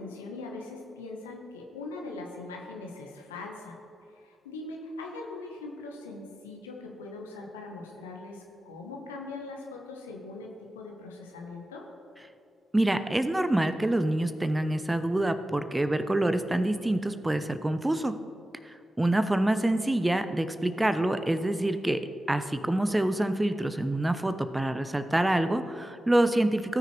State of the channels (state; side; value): normal; both; correlation 0.94